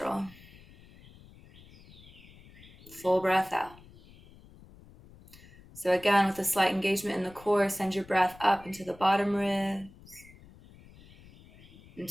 Full breath out. So again, with a slight engagement in the core, send your breath up into the bottom ribs,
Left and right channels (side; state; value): left; noise; rumble, 22 dB below the sound